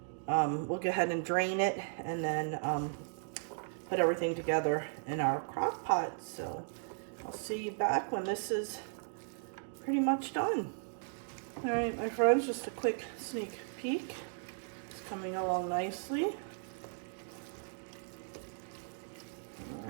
We'll go ahead and drain it, and then put everything together in our crock pot. So I'll see you back when this is pretty much done. All right, my friends, just a quick sneak peek. It's coming along nicely.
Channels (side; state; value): left; silent; digital silence